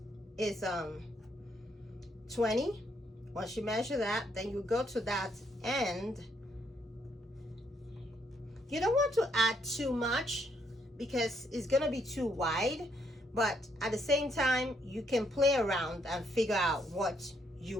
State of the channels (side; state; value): both; normal; correlation 0.73